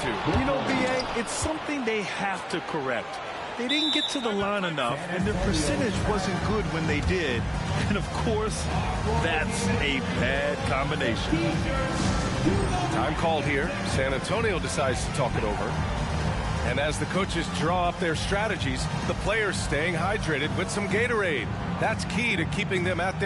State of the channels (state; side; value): identical; both; correlation 1.00